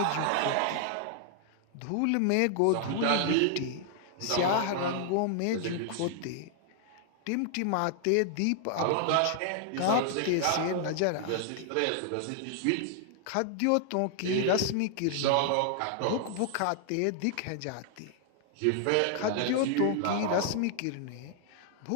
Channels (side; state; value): both; different; correlation 0.00